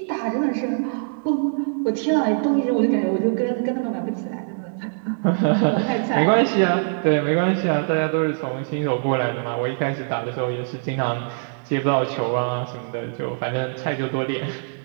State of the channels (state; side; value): silent; left; 64 dB below the other